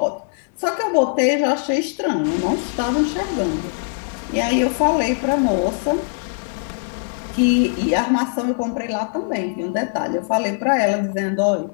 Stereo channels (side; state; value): right; silent; 65 dB below the other